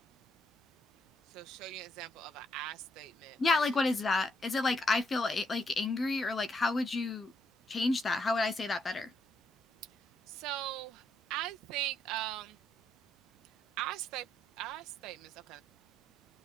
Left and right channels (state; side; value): normal; both; correlation 0.75